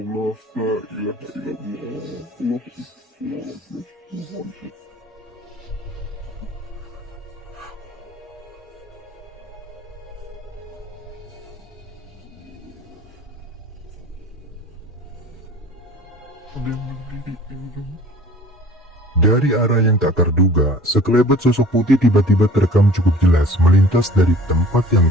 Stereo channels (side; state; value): both; normal; correlation 0.47